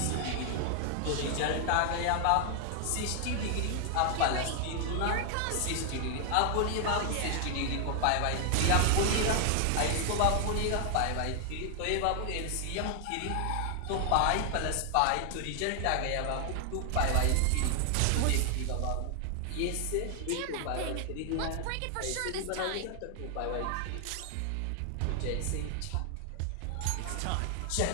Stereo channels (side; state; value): both; different; correlation 0.00